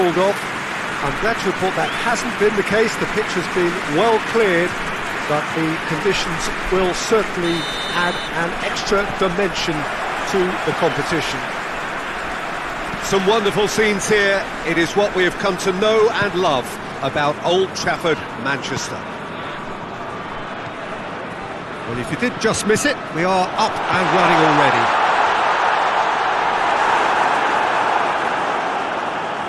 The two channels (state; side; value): identical; both; correlation 1.00